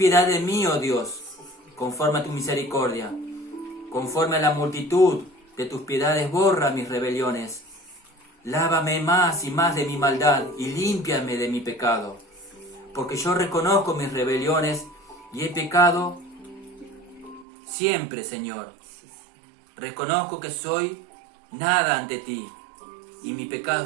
de mí, oh Dios, conforme a tu misericordia. Conforme a la multitud de tus piedades, borra mis rebeliones. Lávame más y más de mi maldad y límpiame de mi pecado. Porque yo reconozco mis rebeliones y he pecado siempre, Señor. Reconozco que soy nada ante ti y mi pecado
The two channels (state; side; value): drops out; left; at 17.4 s